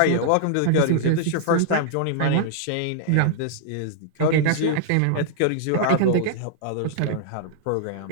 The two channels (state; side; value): different; both; correlation -0.01